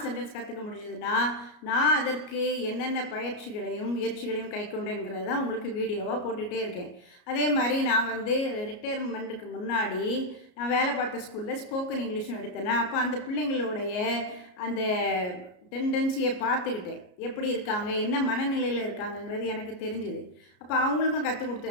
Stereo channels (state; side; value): late; right; 33 ms